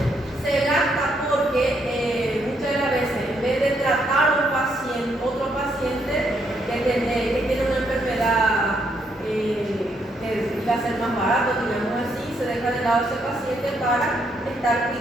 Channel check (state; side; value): normal; both; correlation 0.74